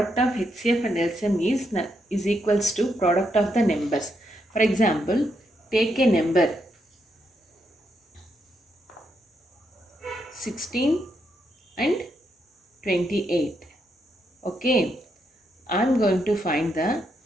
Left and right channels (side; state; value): both; normal; correlation 0.79